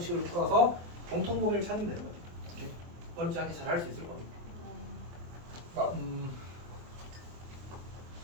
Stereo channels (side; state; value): left; late; 24 ms